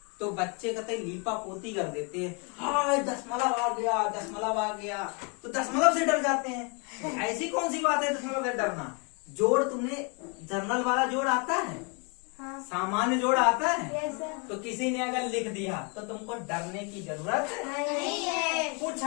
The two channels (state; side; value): quieter; right; 34.3 dB